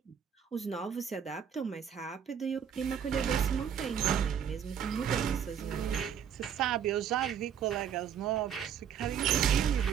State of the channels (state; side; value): quieter; left; 8.2 dB